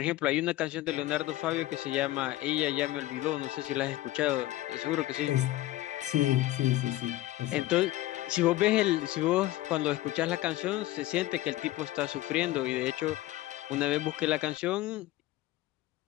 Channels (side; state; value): right; quieter; 16.2 dB